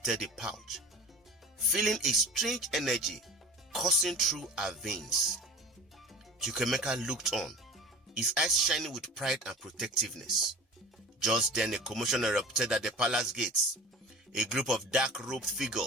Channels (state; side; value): normal; both; correlation 0.38